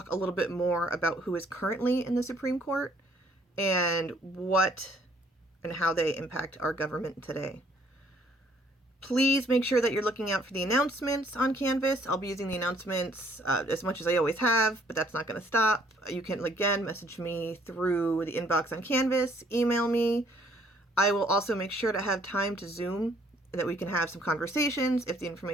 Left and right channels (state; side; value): normal; both; correlation 0.63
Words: a little bit more about who is currently in the Supreme Court and what and how they impact our government today. Please make sure that you're looking out for the announcements on Canvas. I'll be using the announcements as much as I always have, but that's not going to stop. You can, again, message me through the inbox on Canvas, email me. I will also make sure to have time to Zoom, that we can have some conversations if the